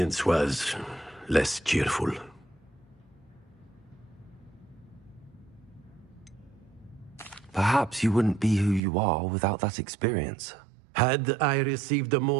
was less cheerful. Perhaps you wouldn't be who you are without that experience. Had I received a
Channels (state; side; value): drops out; left; at 8.8 s